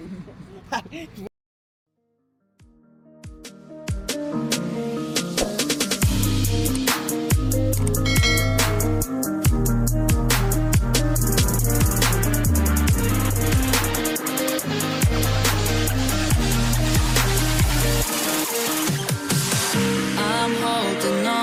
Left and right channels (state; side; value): identical; both; correlation 1.00